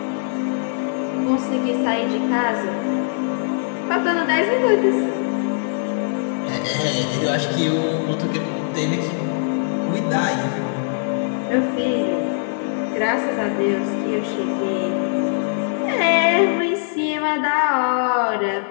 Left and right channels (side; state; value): right; silent; digital silence